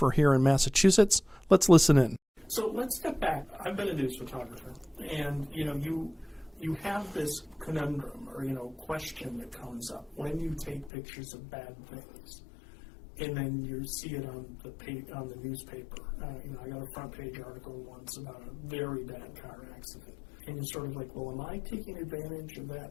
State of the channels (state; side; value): drops out; right; at 10.9 s